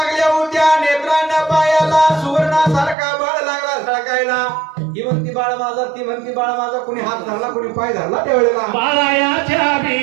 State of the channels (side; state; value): left; drops out; at 3.0 s